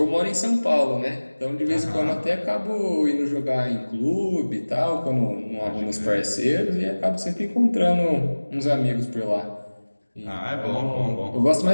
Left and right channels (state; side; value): inverted; both; correlation -1.00